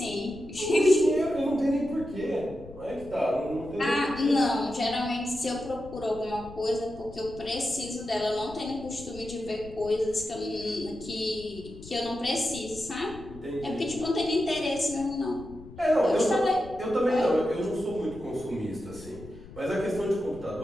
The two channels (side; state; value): left; noise; rumble, 17 dB below the sound